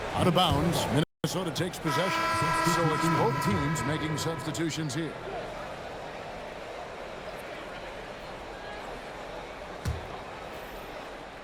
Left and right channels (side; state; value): both; identical; correlation 1.00